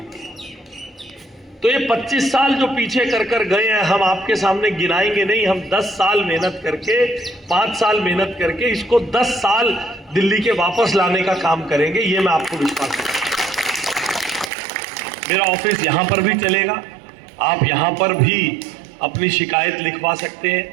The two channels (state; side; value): drops out; left; at 14.5 s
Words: लिए। तो ये 25 साल जो पीछे कर गए हैं, हम आपके सामने गिनाएंगे नहीं, हम 10 साल मेहनत करके, 5 साल मेहनत करके इसको 10 साल दिल्ली के वापस लाने का काम करेंगे, ये मैं आपको विश्वास दूंगा। मेरा ऑफिस यहां पर भी चलेगा, आप यहां पर भी अपनी शिकायत लिखवा सकते हैं।